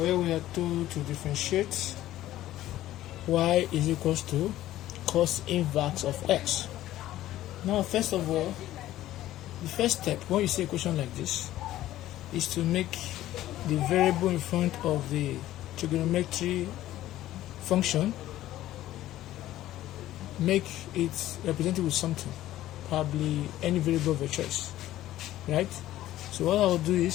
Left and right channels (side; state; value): right; quieter; 14.2 dB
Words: we are told to differentiate y is equals to cos inverse of x. Now first of all, the first step when you see a question like this is to make the variable in front of the trigonometry function, make it represented with something, probably any variable of your choice, right? So what I'll do